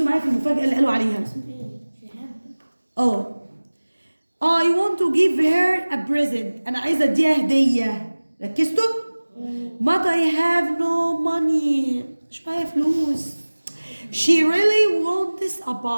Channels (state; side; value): inverted; both; correlation -1.00